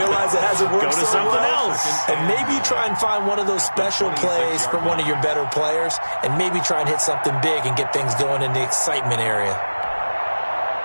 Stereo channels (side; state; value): both; inverted; correlation -1.00